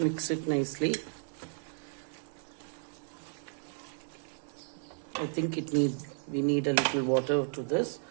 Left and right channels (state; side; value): silent; left; digital silence